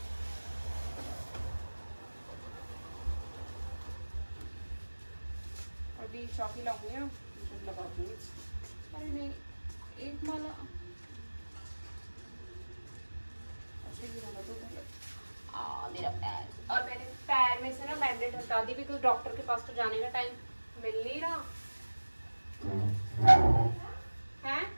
अभी चौकी लाऊंगी ना, लगा दूंगी। अरे नहीं, एक माला अच्छा गिराना तो पहले। मेरा पैर, और मैंने पैर में से ना बैंडेज हटा दी बिकॉज डॉक्टर के पास तो जाने का टाइम मिल नहीं रहा है।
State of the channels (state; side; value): inverted; both; correlation -1.00